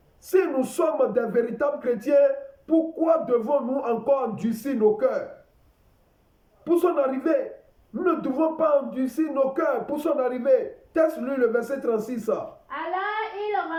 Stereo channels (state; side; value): identical; both; correlation 1.00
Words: Si nous sommes des véritables chrétiens, pourquoi devons-nous encore endurcir nos cœurs? Pour son arrivée, nous ne devons pas endurcir nos cœurs pour son arrivée. Teste-lui le verset 36. Alors il